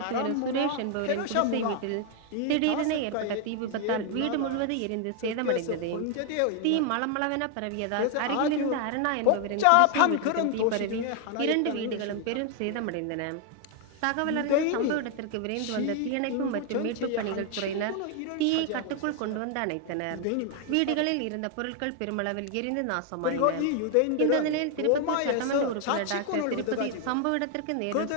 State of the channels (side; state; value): both; different; correlation 0.00